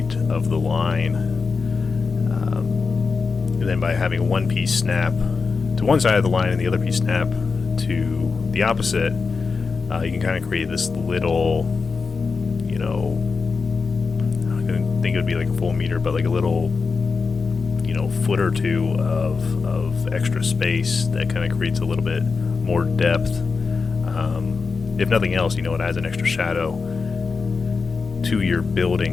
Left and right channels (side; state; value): right; quieter; 4.7 dB